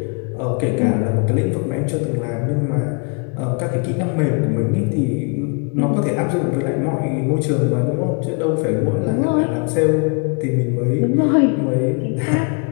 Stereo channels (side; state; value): right; quieter; 37.3 dB